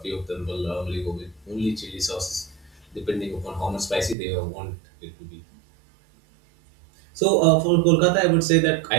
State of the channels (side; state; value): left; drops out; at 4.2 s